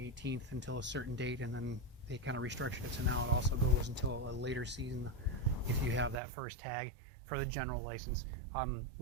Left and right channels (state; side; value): drops out; left; at 6.2 s